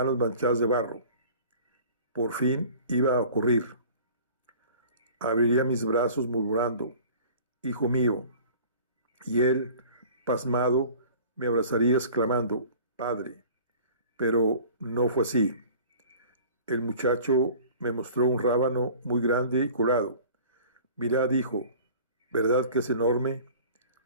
manchadas de barro. Por fin iba a ocurrir. Abriría mis brazos murmurando, «Hijo mío», y él, pasmado, me abrazaría exclamando, «Padre». Pero no fue así. El muchacho me mostró un rábano muy grande y colorado. «Mirad, hijo, ¿verdad que es enorme?»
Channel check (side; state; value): both; inverted; correlation -0.46